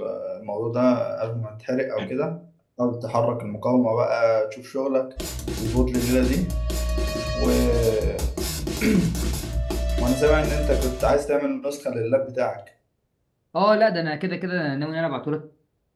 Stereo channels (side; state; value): both; identical; correlation 1.00